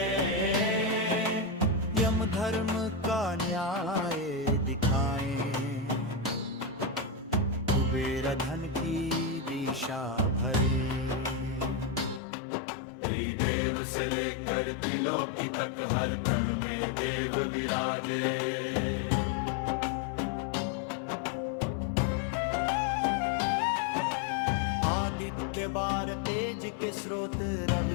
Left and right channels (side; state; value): right; drops out; at 12.2 s